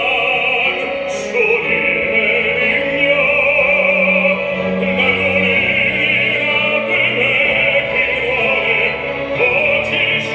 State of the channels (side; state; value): both; identical; correlation 1.00